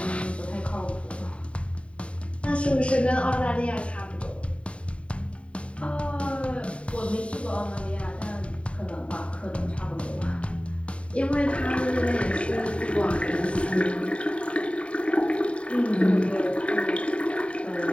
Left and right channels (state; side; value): late; right; 0.062 ms